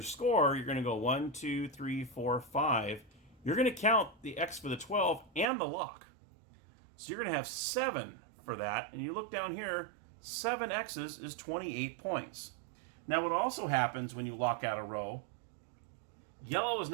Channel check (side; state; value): left; drops out; at 5.5 s